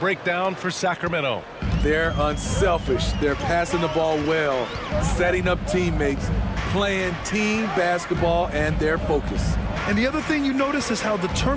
for Sacramento. They're unselfish. They're passing the ball well, setting up teammates, playing team basketball, and their focus. And the other thing you notice is how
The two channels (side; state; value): both; identical; correlation 1.00